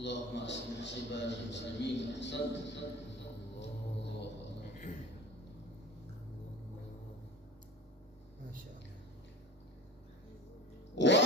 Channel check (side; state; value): both; normal; correlation 0.33